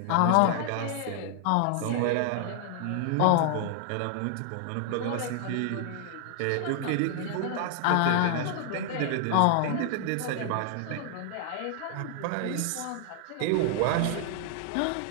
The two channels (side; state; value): both; different; correlation 0.00